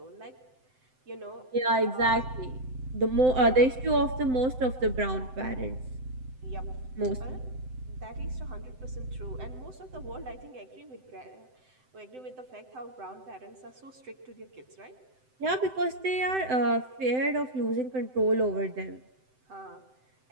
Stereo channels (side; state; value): left; late; 7.8 ms